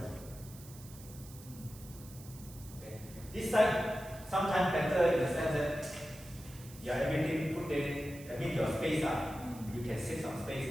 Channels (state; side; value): noise; right; hiss, 18 dB below the sound